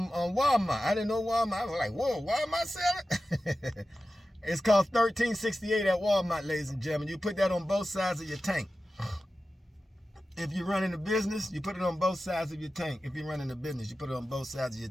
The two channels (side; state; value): both; normal; correlation 0.94